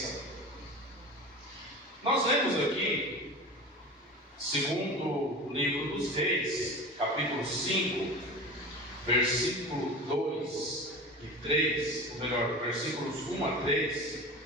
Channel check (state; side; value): normal; both; correlation 0.33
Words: Nós lemos aqui, segundo o livro dos Reis, capítulo 5, versículo 2 e 3, ou melhor, versículos 1 a 3,